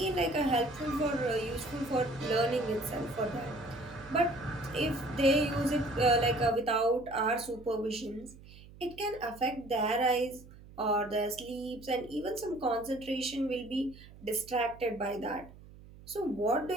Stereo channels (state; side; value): noise; right; hum, 20 dB below the sound